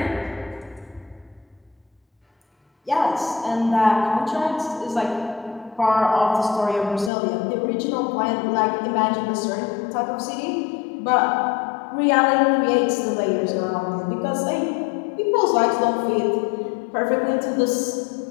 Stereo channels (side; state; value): right; drops out; at 7.1 s